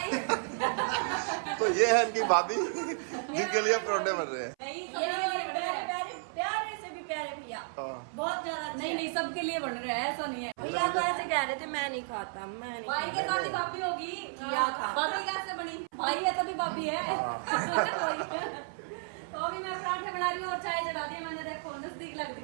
तो ये है इनकी भाभी जिनके लिए परोठे बन रहे हैं। प्यारे से भी प्यारे भैया, बहुत ज्यादा। नहीं, सबके लिए बन रहे हैं, ऐसा नहीं है। भैया तो ऐसे कह रहे थे मैं नहीं खाता, मैं नहीं भाई के साथ ही भाभी होगी। क्या था? भाभी कैसे बनी? भाई है तभी भाभी है। तो अभी मैं पराठे बना रही हूँ और चाय चढ़ा दी मैंने। देखो नजदीक लग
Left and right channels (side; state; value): left; silent; 56 dB below the other